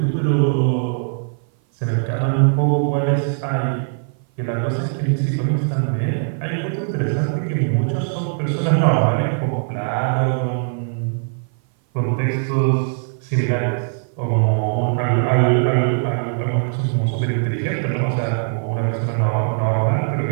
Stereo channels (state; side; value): silent; left; 58 dB below the other